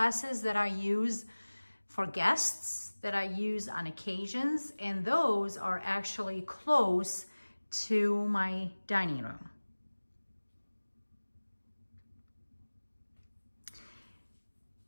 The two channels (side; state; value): both; inverted; correlation -1.00